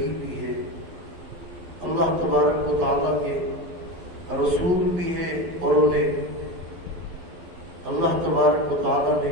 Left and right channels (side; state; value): left; late; 12 ms